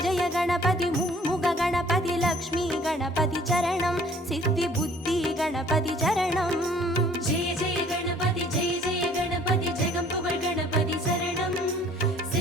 जय गणपति मुम्मुग गणपति लक्ष्मी गणपति चरणं सिद्धि बुद्धि गणपति चरणं जय जय गणपति जगम्पुगळ गणपति शरणं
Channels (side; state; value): both; normal; correlation 0.56